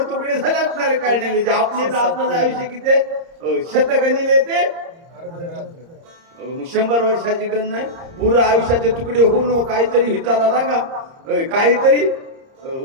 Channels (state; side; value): late; left; 30 ms